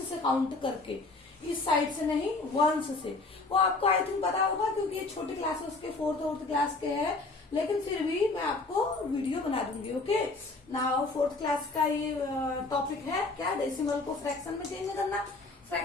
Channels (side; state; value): right; quieter; 3.5 dB